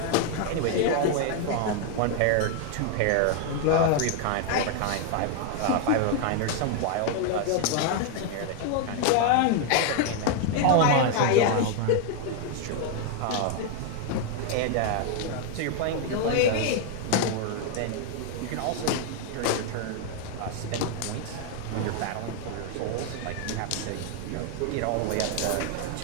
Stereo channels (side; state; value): both; different; correlation 0.01